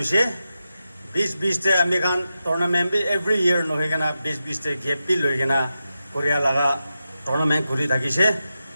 20 te ami kan tournament bi every year no hegana 20 te gap bi loigena korea laga tournament kuri thakise.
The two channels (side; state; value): both; inverted; correlation -0.90